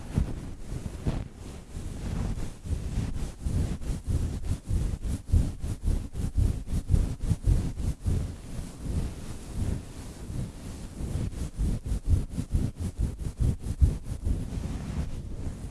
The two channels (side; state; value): both; identical; correlation 1.00